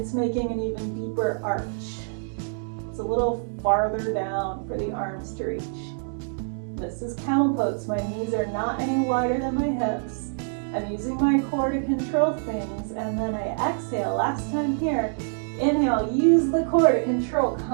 making an even deeper arch. It's a little farther down for the arms to reach. This is camel pose. My knees are not any wider than my hips. I'm using my core to control things, and then I exhale. Last time here, inhale, use the core to control,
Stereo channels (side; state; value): left; silent; digital silence